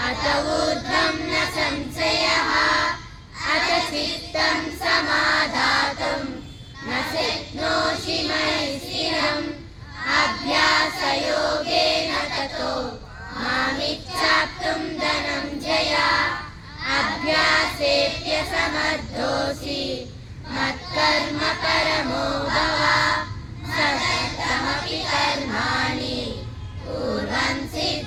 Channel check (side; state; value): both; identical; correlation 1.00